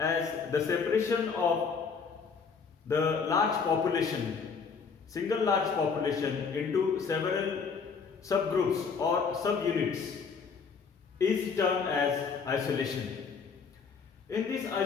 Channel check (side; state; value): right; quieter; 5.5 dB